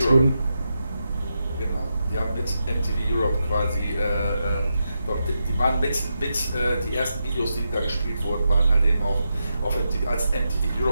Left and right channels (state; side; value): inverted; both; correlation -0.86